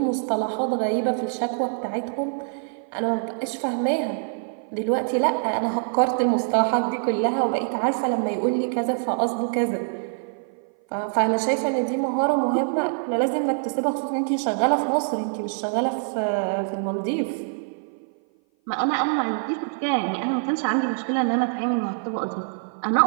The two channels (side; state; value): left; silent; 56 dB below the other